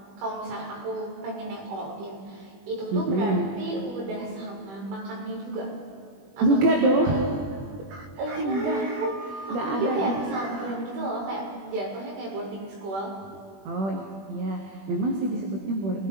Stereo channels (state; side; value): late; left; 21 ms